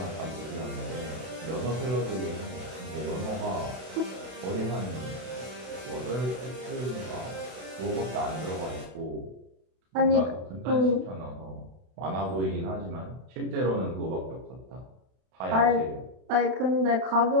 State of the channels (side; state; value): left; late; 32 ms